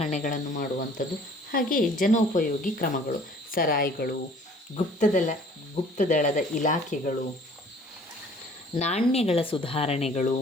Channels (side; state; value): both; normal; correlation 0.53